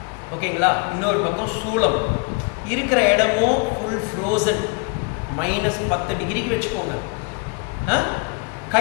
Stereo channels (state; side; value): quieter; right; 33.2 dB